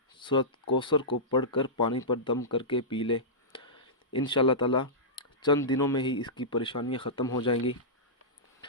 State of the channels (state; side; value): normal; both; correlation -0.15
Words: سورۃ کوثر کو پڑھ کر پانی پر دم کر کے پی لے۔ انشاءاللہ تعالی چند دنوں میں ہی اس کی پریشانیاں ختم ہو جائیں گی۔